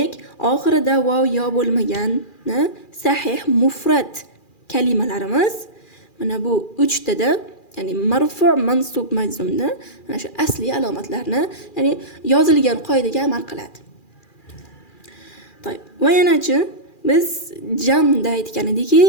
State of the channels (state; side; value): late; right; 2.4 ms